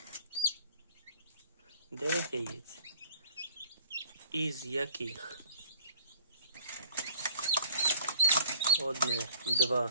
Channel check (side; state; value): both; inverted; correlation -0.52